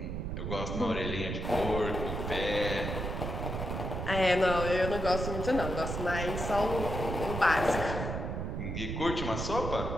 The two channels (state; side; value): noise; right; rumble, 3 dB below the sound